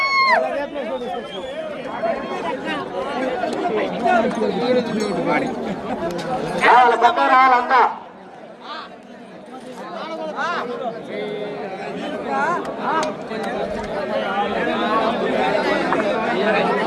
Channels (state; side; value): identical; both; correlation 1.00